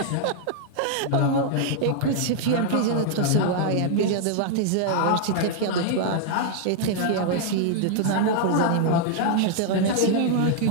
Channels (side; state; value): both; different; correlation 0.00